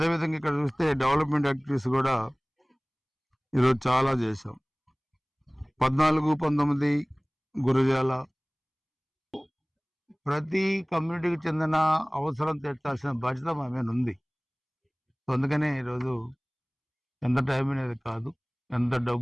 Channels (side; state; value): both; identical; correlation 1.00